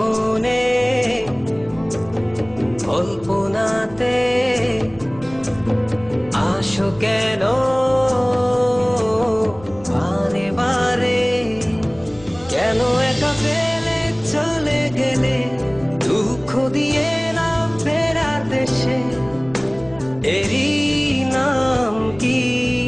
কল্পনাতে আসো কেন বারে বারে, কেন একা ফেলে চলে গেলে দুঃখ দিয়ে না ফেরার দেশে, এরই নাম কি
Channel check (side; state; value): left; noise; rumble, 21 dB below the sound